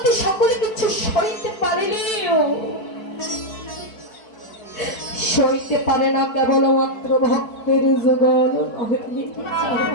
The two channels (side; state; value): right; late; 4.6 ms